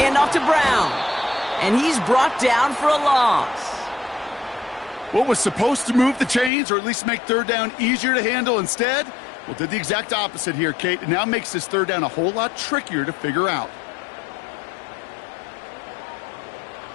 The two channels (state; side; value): drops out; right; at 6.5 s